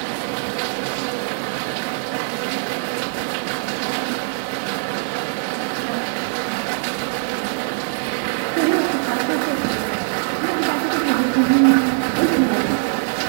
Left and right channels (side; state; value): left; silent; digital silence